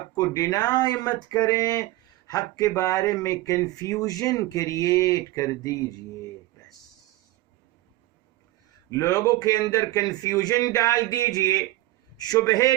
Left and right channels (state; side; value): quieter; left; 17.7 dB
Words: کو ڈینائی مت کریں، حق کے بارے میں کنفیوژن کریٹ کر دیجئے، بس لوگوں کے اندر کنفیوژن ڈال دیجئے، شبہے